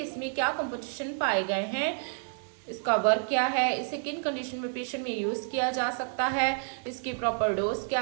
इसमें क्या कंपोजिशन पाए गए हैं, इसका वर्क क्या है, इसे किन कंडीशन में पेशेंट में यूज़ किया जा सकता है, इसकी प्रॉपर डोज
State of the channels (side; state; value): left; silent; 58 dB below the other